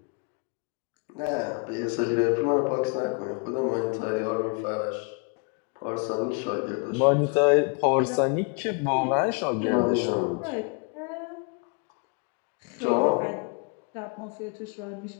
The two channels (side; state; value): right; quieter; 34.5 dB